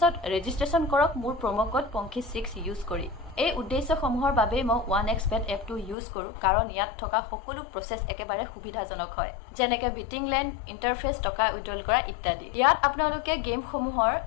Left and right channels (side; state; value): right; drops out; at 6.0 s